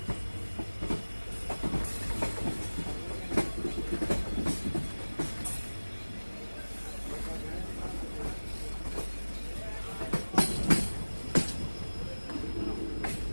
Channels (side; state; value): both; inverted; correlation -1.00